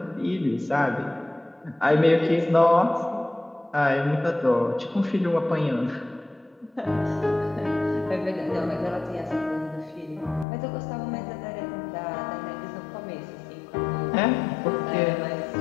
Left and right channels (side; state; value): right; drops out; at 10.5 s